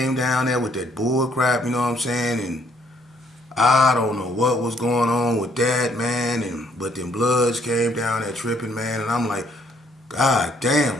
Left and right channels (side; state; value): both; normal; correlation 0.67